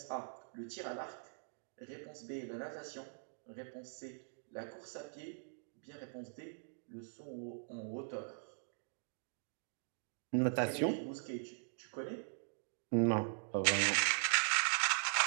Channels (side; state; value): left; silent; digital silence